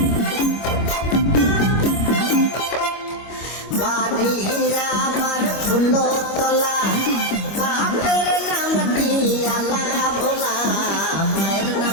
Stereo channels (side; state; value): right; late; 25 ms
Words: বাড়িরা আমার ফুলো তোলা বাপের নামটি আলা ভোলা মায়ের